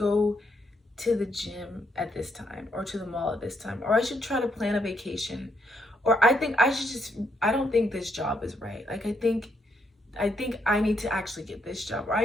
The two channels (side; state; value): both; normal; correlation 0.76